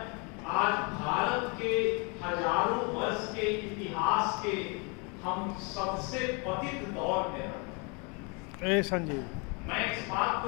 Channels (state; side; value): quieter; right; 32.5 dB